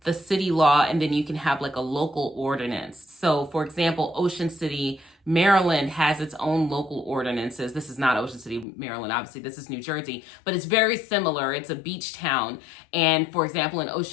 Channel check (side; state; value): right; drops out; at 8.7 s